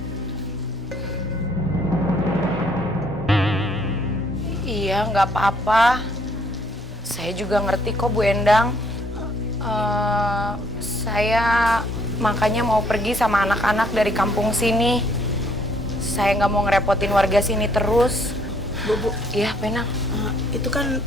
Iya, nggak apa-apa. Saya juga ngerti kok, Bu Endang. Saya makanya mau pergi sama anak-anak dari kampung sini. Saya nggak mau ngerepotin warga sini terus. Bu. Iya, Penang. Itu kan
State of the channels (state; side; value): normal; both; correlation 0.65